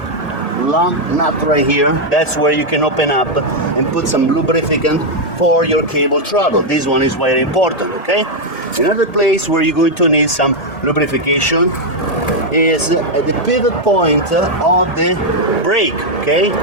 long nut right here. That's where you can open up and put some lubricant for your cable throttle. This one is very important, okay? Another place where you're going to need some lubrication is at the pivot point of the brake, okay?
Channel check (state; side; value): late; right; 1.8 ms